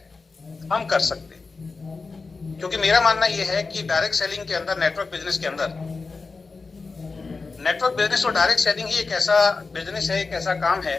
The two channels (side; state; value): right; quieter; 4.2 dB